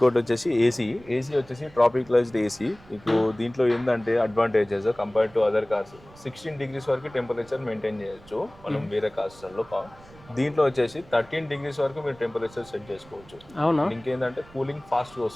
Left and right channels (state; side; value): noise; right; rumble, 23 dB below the sound